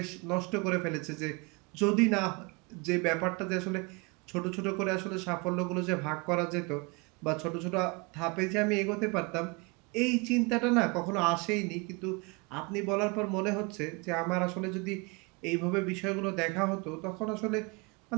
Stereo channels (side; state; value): left; quieter; 28.6 dB